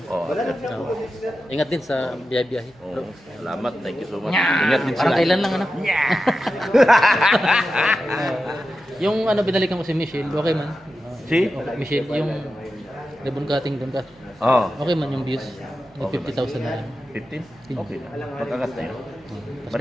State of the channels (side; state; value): right; noise; hum, 28 dB below the sound